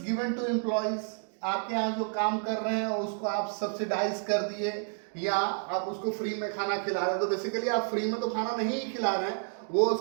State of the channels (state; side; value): silent; left; 58 dB below the other